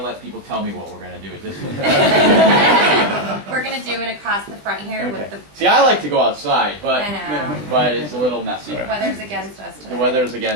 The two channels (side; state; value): left; late; 20 ms